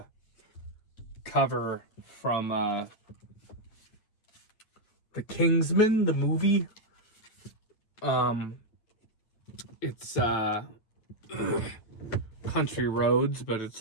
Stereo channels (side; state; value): right; late; 8.7 ms